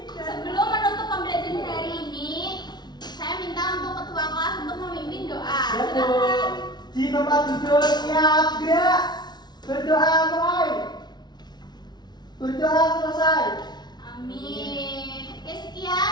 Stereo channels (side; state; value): right; late; 0.20 ms